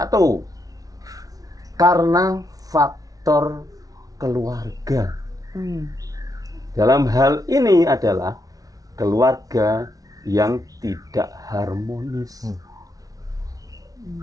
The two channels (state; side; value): late; left; 0.18 ms